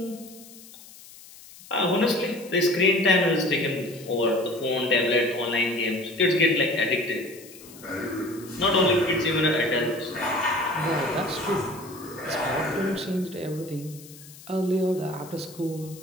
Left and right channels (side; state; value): left; noise; hiss, 19 dB below the sound